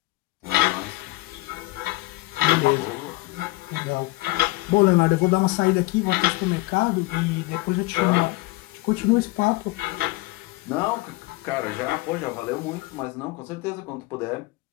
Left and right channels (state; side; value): quieter; right; 21.0 dB